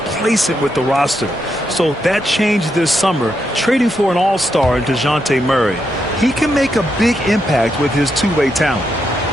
with the roster. So that changed this summer, trading for an all-star in DeJounte Murray. He can make a big impact with his two-way talent.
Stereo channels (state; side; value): normal; both; correlation 0.81